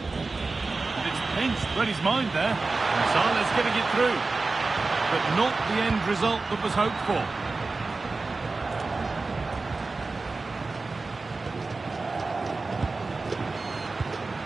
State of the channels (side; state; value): left; quieter; 3.7 dB